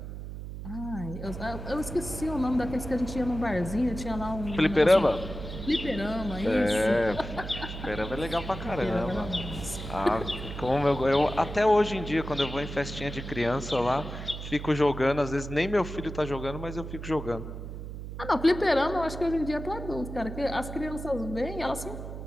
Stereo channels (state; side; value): noise; right; hum, 9 dB below the sound